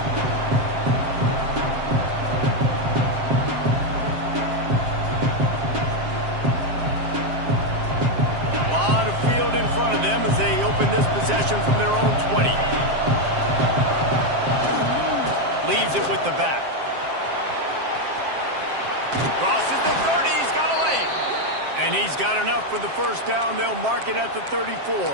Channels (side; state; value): left; late; 7.5 ms